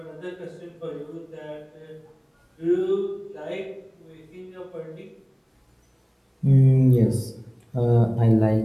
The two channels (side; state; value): both; identical; correlation 1.00